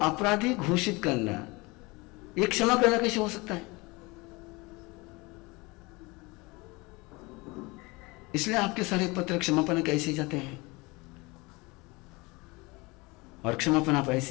घोषित करना, ये क्षमा करना कैसे हो सकता है? इसलिए आपके सारे पत्र क्षमापना कैसे जाते हैं और क्षमापना आप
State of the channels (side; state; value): right; quieter; 24.9 dB